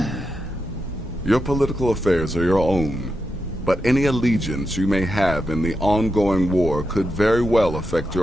Your political affairs are your own, but any allegiance you may have in the ongoing war could very well affect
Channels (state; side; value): normal; both; correlation 0.86